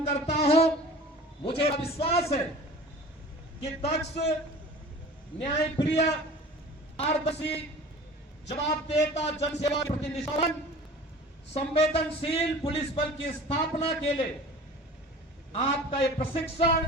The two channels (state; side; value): normal; both; correlation 0.42